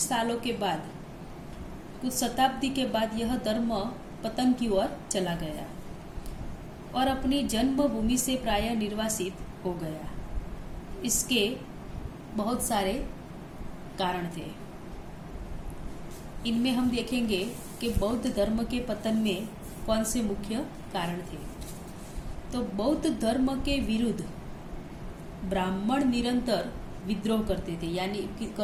के बाद, कुछ शताब्दी के बाद यह धर्म पतन की ओर चला गया और अपनी जन्मभूमि से प्राय निर्वासित हो गया। इसके बहुत सारे कारण थे। इनमें हम देखेंगे कि बौद्ध धर्म के पतन में कौन से मुख्य कारण थे। तो बौद्ध धर्म के विरुद्ध ब्राह्मण निरंतर विद्रोह करते थे,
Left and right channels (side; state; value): both; identical; correlation 1.00